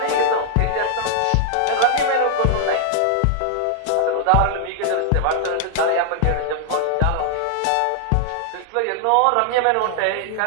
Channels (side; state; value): both; different; correlation 0.00